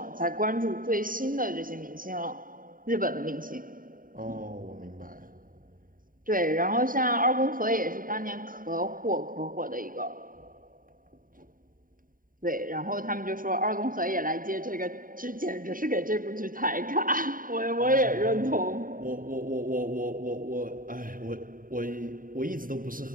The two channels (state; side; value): late; left; 0.40 ms